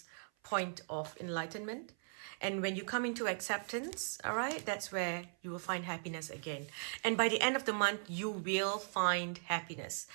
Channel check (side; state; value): left; silent; 52 dB below the other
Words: point of enlightenment. And when you come into acceptance, all right, that's where you will find happiness again. And by the end of the month, you will find happiness.